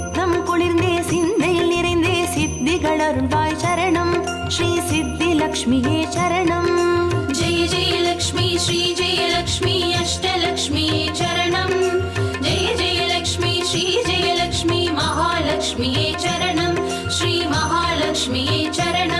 குளிர்ந்தே சிந்தையில் நிறைந்தே சித்திகள் அருள்வாய் சரணம் ஸ்ரீ சித்தி லக்ஷ்மியே சரணம் जय जय लक्ष्मी श्री जय लक्ष्मी अष्टलक्ष्मी चरणं जय जय लक्ष्मी श्री जय लक्ष्मी महालक्ष्मी चरणं श्री महालक्ष्मी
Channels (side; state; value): both; identical; correlation 1.00